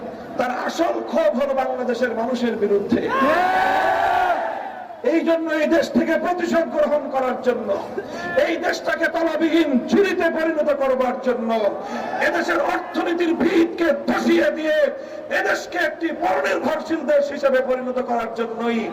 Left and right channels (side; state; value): both; identical; correlation 1.00